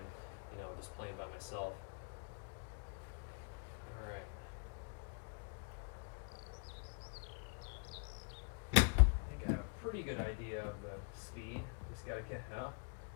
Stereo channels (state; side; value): quieter; right; 39.7 dB